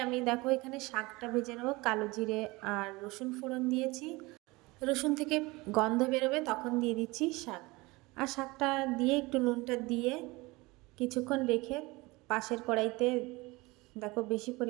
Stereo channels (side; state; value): left; quieter; 22.9 dB